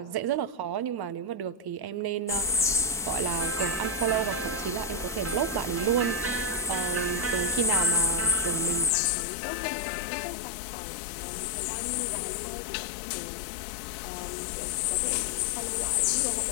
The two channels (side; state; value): right; drops out; at 8.9 s